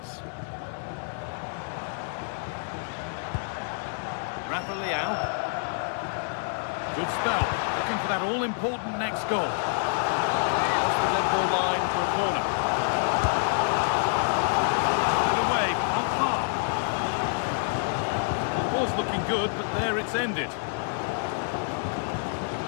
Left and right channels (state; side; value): silent; right; digital silence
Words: Rafa Leao. Good spell. Looking for that all-important next goal. That's the red ball line for a corner. Was looking good, but there it's ended.